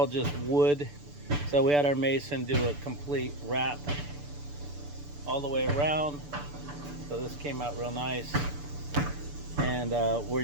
just wood. So we had our mason do a complete wrap all the way around. So this came out real nice. And we're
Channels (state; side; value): late; left; 6.9 ms